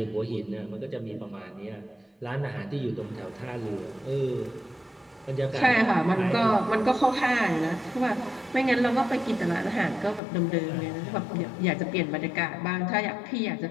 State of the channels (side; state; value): right; drops out; at 10.2 s